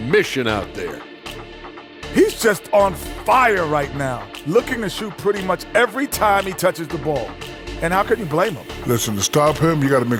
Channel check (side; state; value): both; identical; correlation 1.00